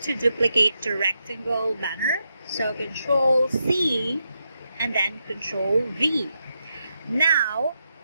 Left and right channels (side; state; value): both; inverted; correlation -0.84